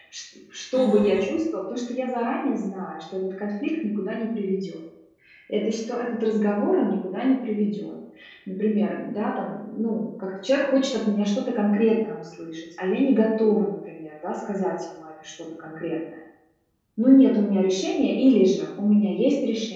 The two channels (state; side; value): identical; both; correlation 1.00